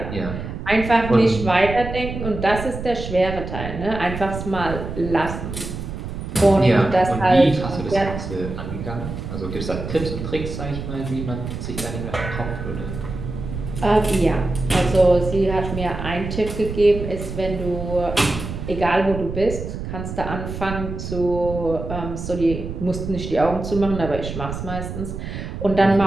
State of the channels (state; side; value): noise; right; rumble, 7 dB below the sound